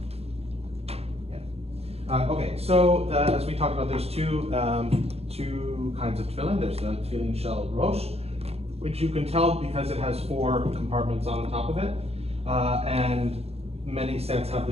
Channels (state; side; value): late; left; 0.29 ms